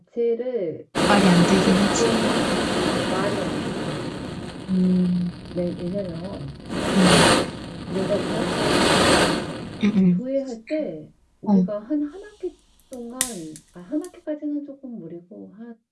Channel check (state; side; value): identical; both; correlation 1.00